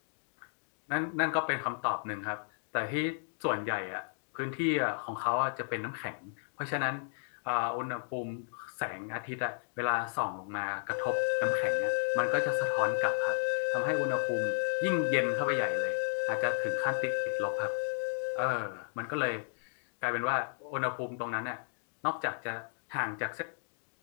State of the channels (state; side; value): silent; right; digital silence